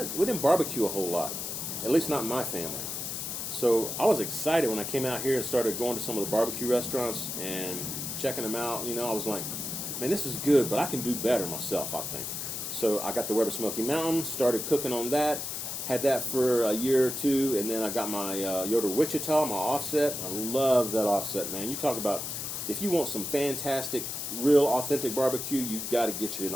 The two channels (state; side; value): noise; left; hiss, 5 dB below the sound